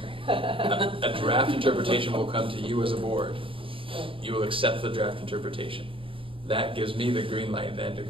a draft interpretation will come to you as a board. You will accept the draft interpretation. That gives me the green light then to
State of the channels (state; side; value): late; left; 0.26 ms